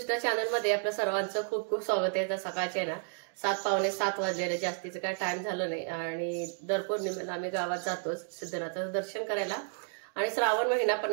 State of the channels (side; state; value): left; silent; 57 dB below the other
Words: channel मध्ये आपल्या सर्वांचं खूप खूप स्वागत आहे। तर सकाळचे ना 7:15 वाजलेले, जास्तीचं काय टाइम झालं नाही आणि दर पौर्णिमेला आम्ही गावात जातोच सिद्धनाथाचं दर्शन करायला। आणि श्रावण महिना